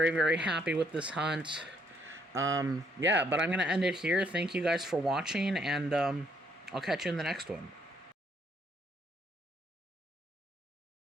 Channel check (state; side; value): normal; both; correlation 0.70